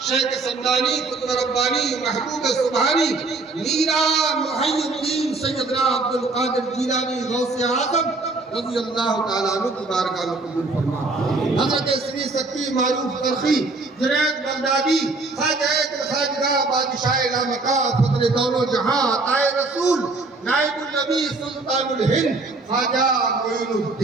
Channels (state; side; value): quieter; left; 3.5 dB